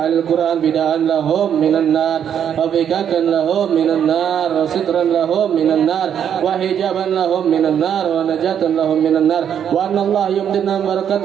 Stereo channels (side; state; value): left; quieter; 8.8 dB